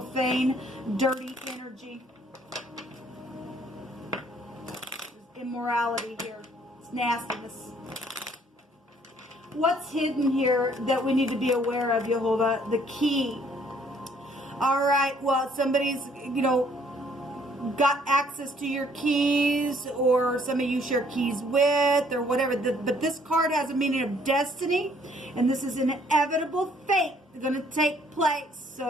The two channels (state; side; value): normal; both; correlation 0.63